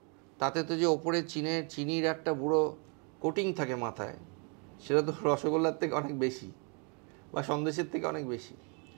তাতে তো যে ওপরে চিনির একটা বুড়ো কোটিং থাকে মাথায়, সেটা তো রসগোল্লার থেকে অনেক বেশি, বা সন্দেশের থেকে অনেক বেশি।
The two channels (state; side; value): quieter; left; 35.9 dB